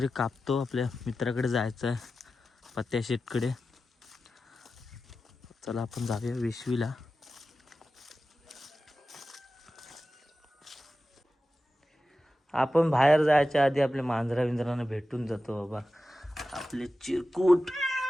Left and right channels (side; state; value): both; normal; correlation 0.93